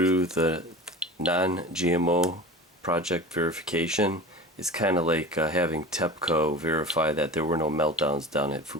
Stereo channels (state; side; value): normal; both; correlation 0.34